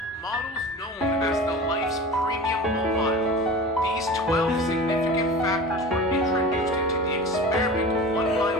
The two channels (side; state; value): both; normal; correlation 0.35